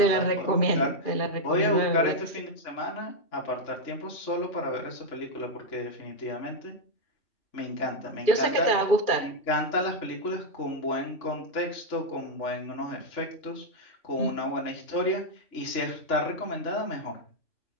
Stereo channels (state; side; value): late; right; 2.5 ms